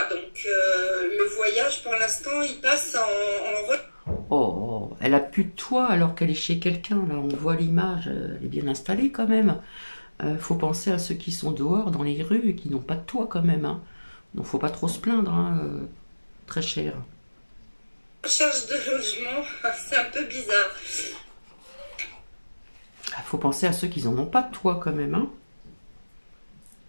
Donc le voyage, pour l'instant, il passe en Oh, elle a plus de toit alors qu'elle est chez quelqu'un. Là, on voit l'image, elle est bien installée quand même. Faut penser à ceux qui sont dehors dans les rues et qui n'ont pas de toit quand même, hein. Donc faut pas trop se plaindre, hein, très cher. recherche de logement. C'est un peu bizarre. Faut penser à ceux qui n'en ont pas de toit quand même, hein.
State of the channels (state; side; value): inverted; both; correlation -1.00